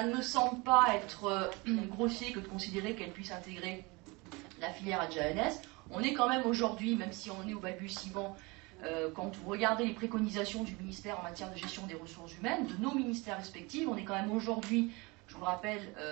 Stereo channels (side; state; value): left; quieter; 25.9 dB